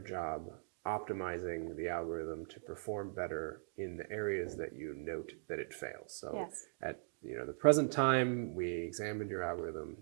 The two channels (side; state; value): left; silent; digital silence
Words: job optimizing the algorithm to perform better in the areas that you note that it fails. So at the present time we examined your algorithm